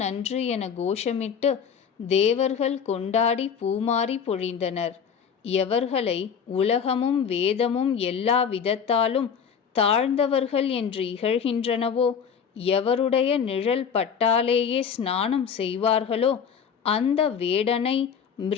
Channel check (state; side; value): quieter; right; 7.1 dB